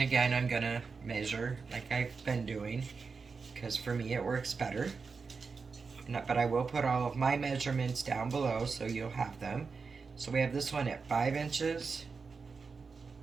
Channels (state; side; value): quieter; left; 4.9 dB